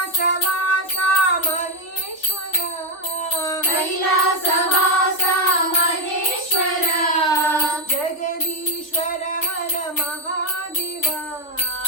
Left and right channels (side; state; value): right; late; 3.4 ms